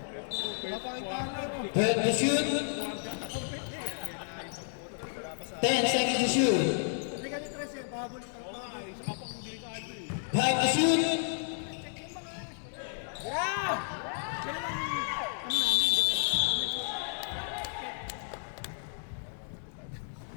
Napakita na ro. 12 to shoot. 10 seconds to shoot. Hindi ka ni Tres eh, pahabol ka. Oo nga, isa ka pang delikado eh. 5 to shoot. Yeah! Ganun ang ano namin.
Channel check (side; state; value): right; silent; 56 dB below the other